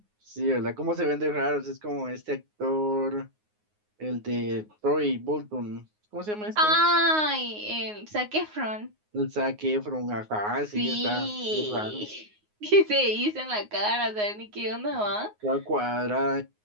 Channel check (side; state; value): left; late; 9.5 ms